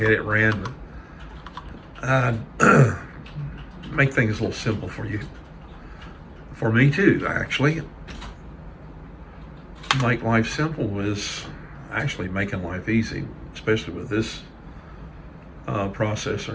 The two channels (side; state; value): both; identical; correlation 1.00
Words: It ran. Make things a little simple for you. For me too, actually. Make life simple is actually making life easy, especially with this